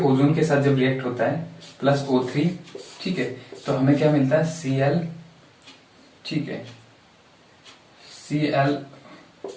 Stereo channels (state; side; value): identical; both; correlation 1.00